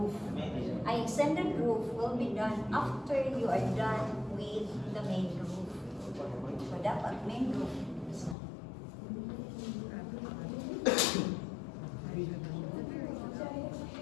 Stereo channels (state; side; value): drops out; right; at 8.3 s